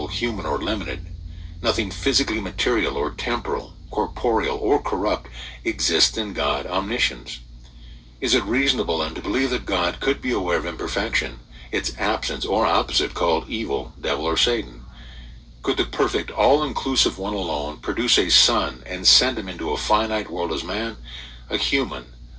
human, or limited, nothing physically material or temporal, corporeal, or corrupt exists in God omniscience. Is it reasonable then to believe that God could be aware of imperfection, its absence or opposite called evil, devil, or Satan? Could the perfect, all-inclusive one alone produce a son and send him into a finite world as man, a human,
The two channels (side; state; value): both; identical; correlation 1.00